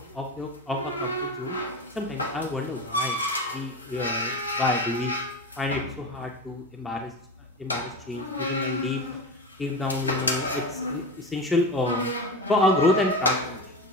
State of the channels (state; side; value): normal; both; correlation 0.24